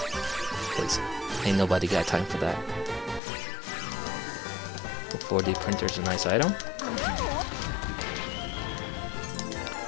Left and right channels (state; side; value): drops out; right; at 3.2 s